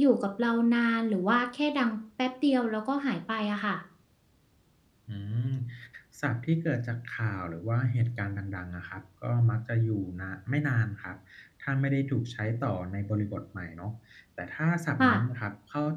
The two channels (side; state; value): both; identical; correlation 1.00